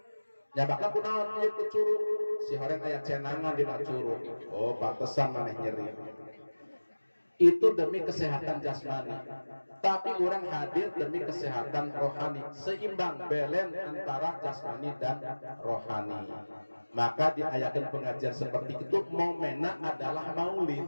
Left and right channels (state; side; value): inverted; both; correlation -1.00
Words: Nyabakna kunaon ieu ku curug? Si horeng aya cenangan dina curug. Oh, pantesan maneh nyeri. Itu demi kesehatan jasmani. Tapi orang hadir demi kesehatan rohani. Seimbang, belen antara jasmani dan rohani. Maka diayakan pengajian seperti itu, momenna adalah maulid.